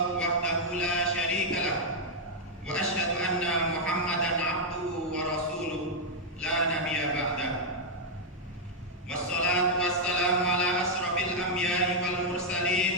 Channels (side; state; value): both; normal; correlation -0.02